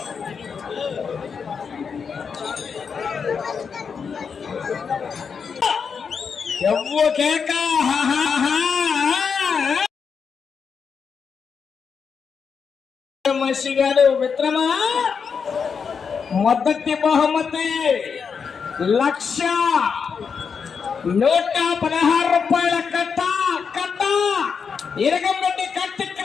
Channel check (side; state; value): right; quieter; 6.1 dB